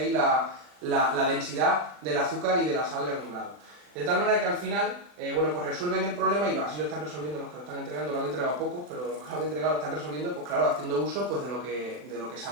la densidad del azúcar y de la sal granulado. De tal manera que al final, bueno, pues resuelven el problema, y así lo están resolviendo los que lo están entregando. Lo han entregado pocos, pero los que lo han entregado lo están resolviendo, pues claro, haciendo uso pues, de lo que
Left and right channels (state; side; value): late; left; 40 ms